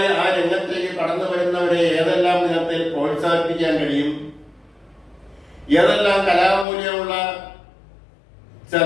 ആ രംഗത്തേക്ക് കടന്നു വരുന്നവരെ ഏതെല്ലാം വിധത്തിൽ പ്രോത്സാഹിപ്പിക്കാൻ കഴിയും, ഏതെല്ലാം കലാമൂല്യമുള്ള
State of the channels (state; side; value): drops out; right; at 6.7 s